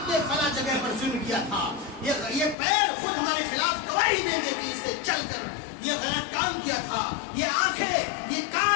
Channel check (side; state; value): right; drops out; at 2.6 s